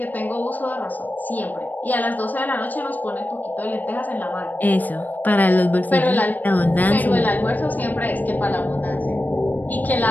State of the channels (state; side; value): late; right; 0.084 ms